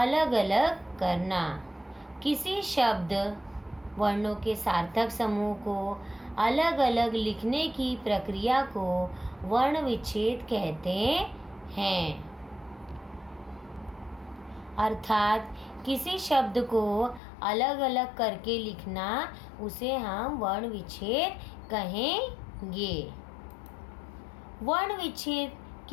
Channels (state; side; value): drops out; right; at 17.2 s